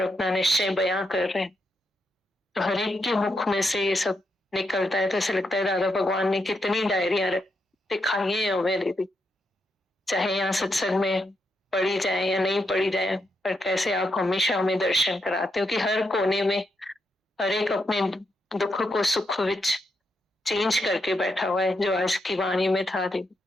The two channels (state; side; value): normal; both; correlation 0.82